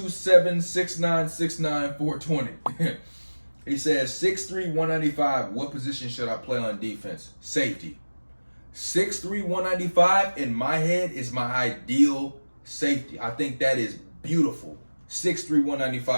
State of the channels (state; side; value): inverted; both; correlation -1.00